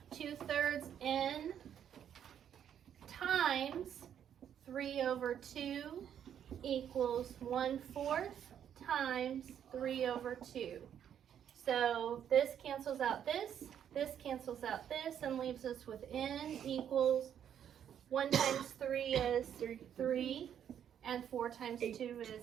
2/3 n times 3/2 equals 1/4 times 3/2. So this cancels out this cancels out this, and leaves us with n equals 1 times 3 is 3, and 4 times 2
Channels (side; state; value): left; quieter; 9.3 dB